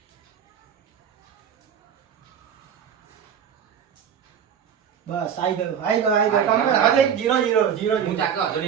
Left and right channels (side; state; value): left; quieter; 8.2 dB